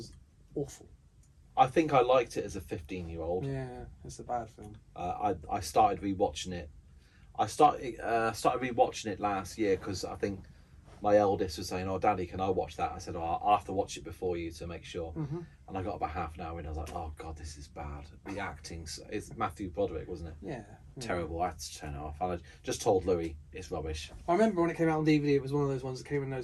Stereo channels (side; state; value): both; identical; correlation 1.00